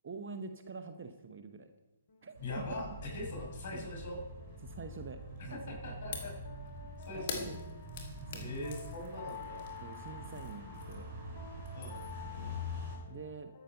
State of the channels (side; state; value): both; inverted; correlation -0.37